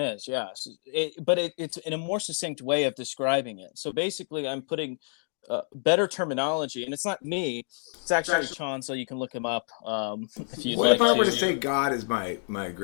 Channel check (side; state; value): right; silent; digital silence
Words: yes. But it's in a more succinct way of describing it. So basically, I'm putting better terminology, and it's not me. It's actually Chan, so you can look him up if you'd like to. What if I were to say God is my